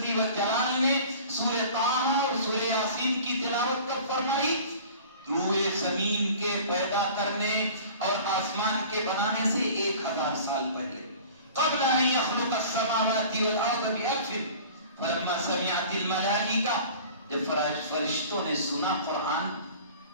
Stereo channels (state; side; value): inverted; both; correlation -0.43